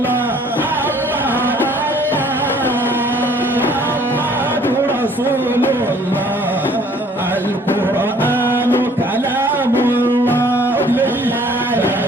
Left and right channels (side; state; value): both; normal; correlation 0.57